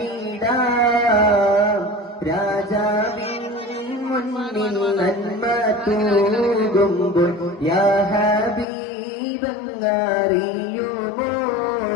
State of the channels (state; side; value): drops out; right; at 8.7 s